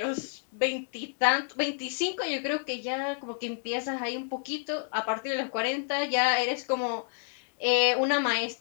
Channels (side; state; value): right; silent; 58 dB below the other